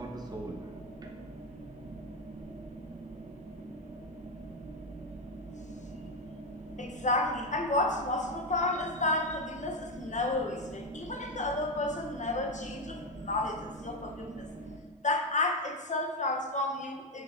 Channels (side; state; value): both; normal; correlation 0.09